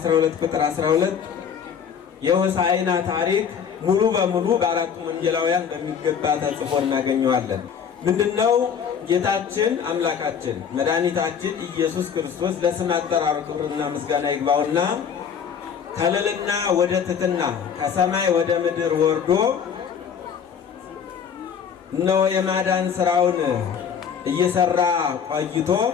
ቁጥር 12 የሆሳዕና ታሪክ ሙሉ በሙሉ በአራቱም ወንጌላውያን በሚገባ ተጽፎ እናገኘዋለን። ምንድነው? ጌታችን አምላካችን መድኃኒታችን ኢየሱስ ክርስቶስ ለስም አጠራሩ ክብርና ምስጋና ይግባውና ከልዕልና ወደ ትሕትና ከሰማይ ወደ ምድር ወርዶ እነሆ የማዳን ስራውን እየሰራ ቆይቶ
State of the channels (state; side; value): quieter; right; 7.4 dB